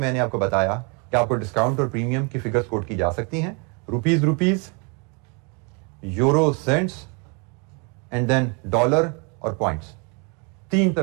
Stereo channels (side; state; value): left; quieter; 33.6 dB